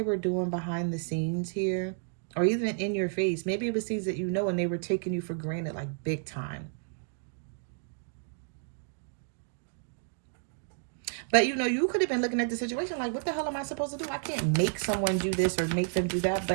were doing behind the scenes here, or even in your face. Maybe it was things that you know and they were taking you for granted, like big time. But, you know, you could have been looking at the situation like, what the hell am I supposed to do? I can't make someone do this or make them do that.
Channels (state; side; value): silent; left; digital silence